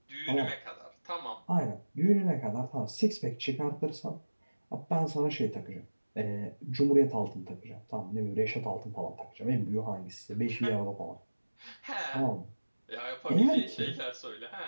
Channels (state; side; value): inverted; both; correlation -1.00